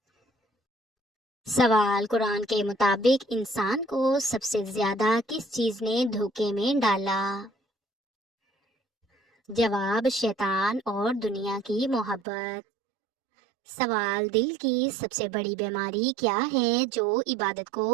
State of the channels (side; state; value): left; drops out; at 12.2 s